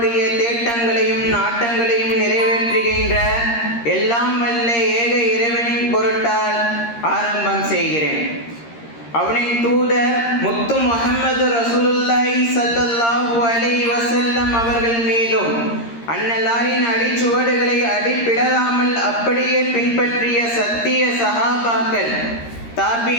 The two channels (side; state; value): right; late; 13 ms